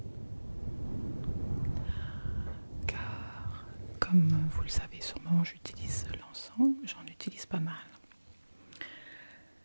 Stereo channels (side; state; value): both; inverted; correlation -1.00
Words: Car, comme vous le savez sûrement, j'utilise l'encens. J'en utilise pas mal.